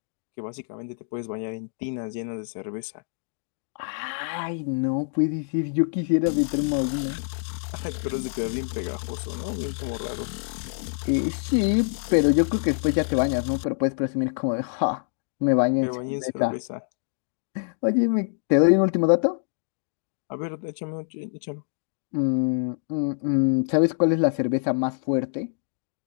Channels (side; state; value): right; silent; 61 dB below the other